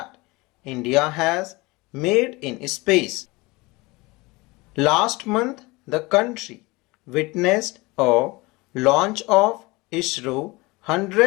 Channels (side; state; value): right; quieter; 23.4 dB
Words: India has made in space. Last month, the country witnessed a launch of ISRO